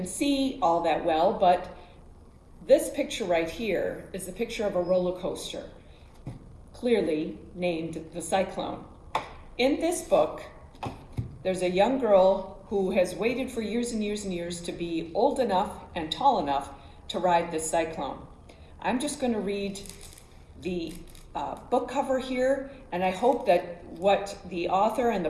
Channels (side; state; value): both; identical; correlation 1.00